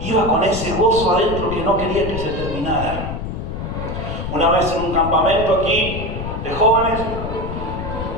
con ese gozo adentro que no quería que se terminara. Una vez en un campamento aquí de jóvenes,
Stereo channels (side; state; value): left; noise; rumble, 6 dB below the sound